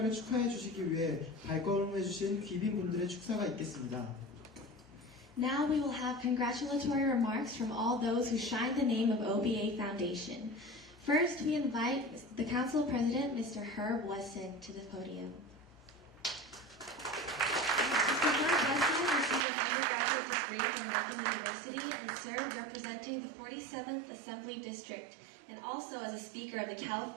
축하해 주시기 위해 발걸음해 주신 귀빈분들의 축사가 있겠습니다. Now we will have congratulatory remarks from all those who shine the name of OBA Foundation. First, we invite the Council President, Mr. Herb Wesson, to the podium. Mr. Herb Wesson received an undergraduate degree from Lincoln University and served representing the 47th Assembly District and also as a Speaker of the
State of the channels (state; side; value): drops out; left; at 19.5 s